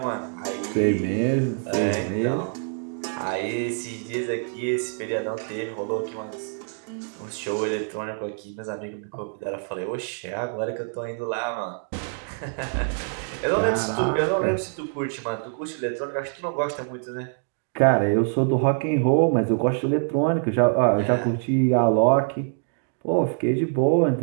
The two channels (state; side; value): silent; left; 62 dB below the other